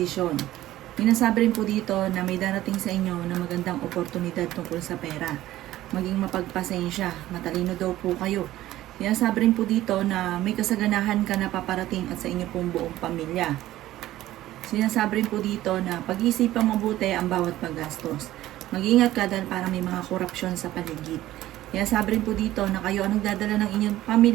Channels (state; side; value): quieter; left; 14.9 dB